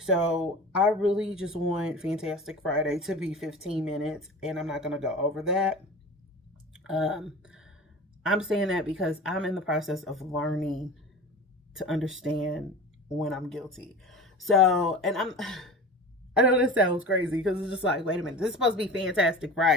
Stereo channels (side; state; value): both; normal; correlation 0.35